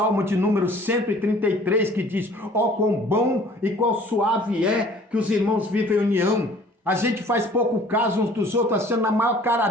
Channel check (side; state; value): both; normal; correlation 0.52